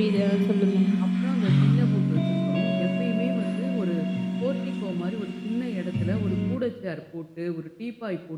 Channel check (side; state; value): both; identical; correlation 1.00